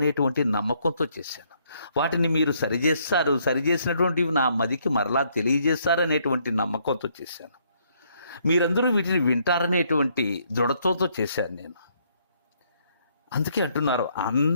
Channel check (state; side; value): inverted; both; correlation -0.70